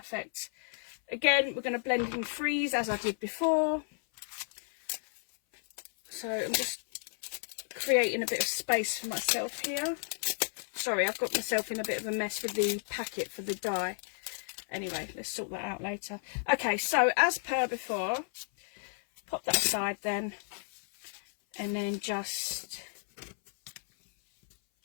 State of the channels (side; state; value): right; silent; 56 dB below the other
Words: Again, we're going to blend in threes as I did before. So I'm just creating a bit of space for myself here. Sorry, I've got myself in a bit of a mess with the packet for the die. Anyway, let's sort that out later. Okay, so as per before, pop that aside then, and then just